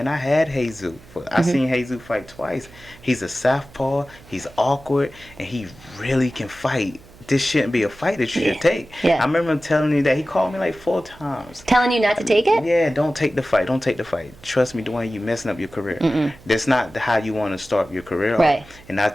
I had Jesus. I seen Jesus fight twice. He's a southpaw. He's awkward, and he really can fight. This shouldn't be a fight that you should take." I remember him telling me that. He called me like 4 times. Telling you not to take it? Yeah, don't take the fight. Don't take the fight. Trust me, Dewayne, you messing up your career. That's not how you want to start your career off. And I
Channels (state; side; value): noise; right; hum, 23 dB below the sound